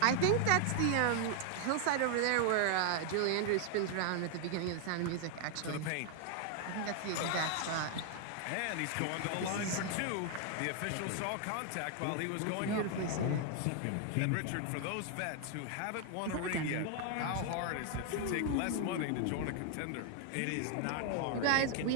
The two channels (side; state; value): both; different; correlation 0.00